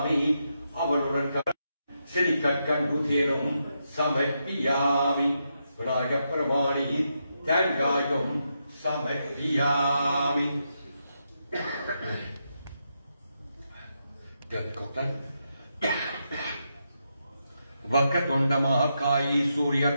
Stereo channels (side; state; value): both; inverted; correlation -0.83